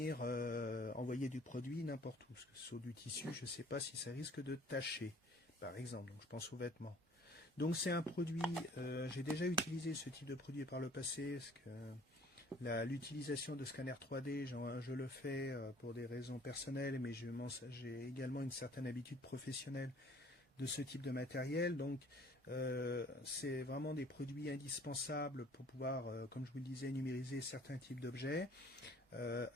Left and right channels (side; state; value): both; normal; correlation 0.54